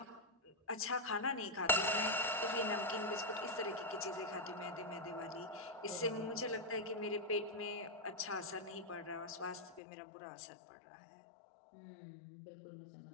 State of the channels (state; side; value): drops out; right; at 9.8 s